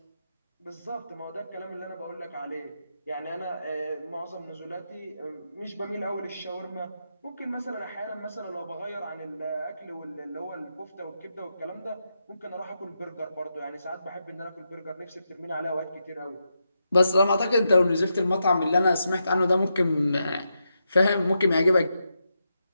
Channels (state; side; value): inverted; both; correlation -0.85